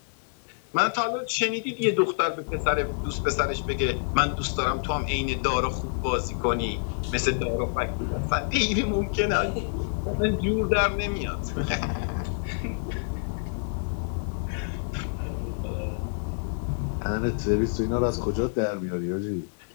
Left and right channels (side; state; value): right; silent; digital silence